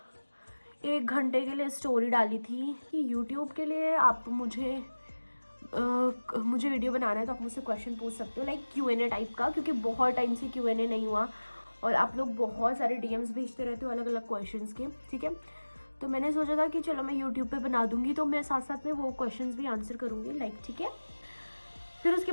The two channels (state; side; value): inverted; both; correlation -1.00